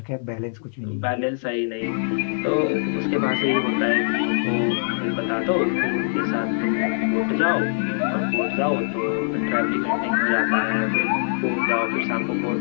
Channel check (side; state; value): right; silent; 63 dB below the other